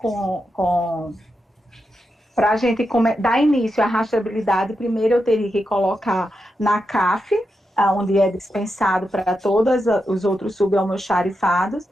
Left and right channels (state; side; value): normal; both; correlation 0.87